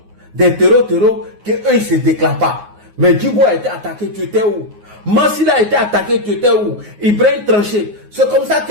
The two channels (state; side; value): late; left; 9.5 ms